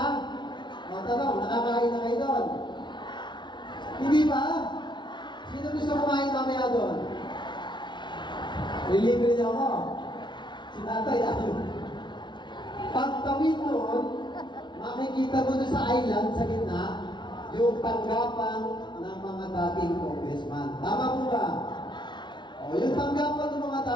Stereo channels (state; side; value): late; right; 0.22 ms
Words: Tanong, nakakain na kayo doon? Hindi ba? Sino gusto kumain mamaya doon? Relibre niyo ako. Si tatay, ayun. Pagtawid noon, makikita mo doon sa island, sa gitna, yung tanggapan ng mga dating congressman. Tama po ba? O, yung tanggapan ng mga